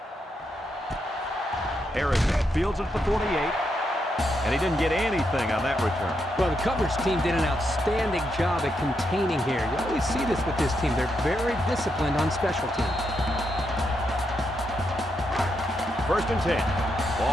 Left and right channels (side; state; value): both; normal; correlation 0.81